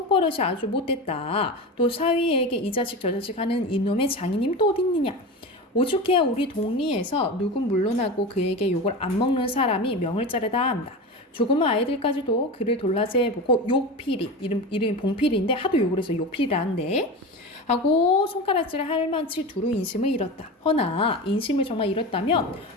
아주 못됐다. 또 사위에게 이 자식 저 자식 하는 이놈의 장인님 또 어디 있느냐. 오죽해야 우리 동리에서 누군 물러나고 그에게 욕을 안 먹는 사람이 명을 자르다 한다. 조그만 아이들까지도 그를 돌라세보고 욕필이 이름이 봉필인데 하도 욕을 해서 욕필이라는데 하고 손가락질을 할 만치 두루 인심을 잃었다. 허나 인심을 정말 잃었다면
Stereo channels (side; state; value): both; normal; correlation 0.26